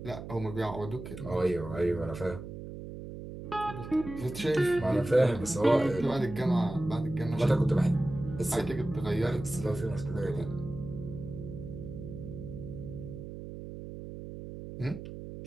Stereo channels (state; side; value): noise; right; hum, 10 dB below the sound